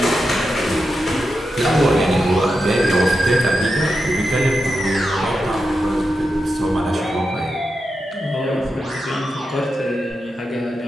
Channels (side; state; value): both; normal; correlation 0.88